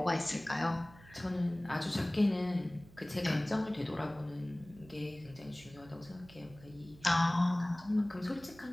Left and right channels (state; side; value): noise; right; hum, 22 dB below the sound